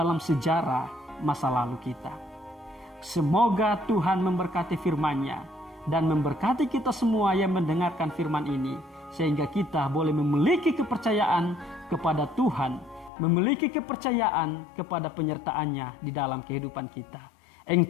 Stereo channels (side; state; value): right; drops out; at 13.1 s